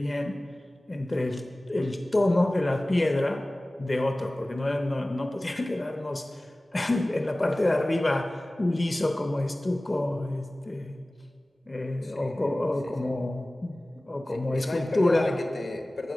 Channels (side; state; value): both; normal; correlation 0.98